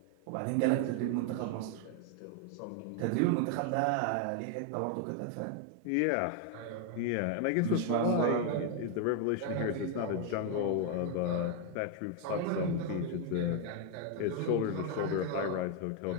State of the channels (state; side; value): different; both; correlation 0.01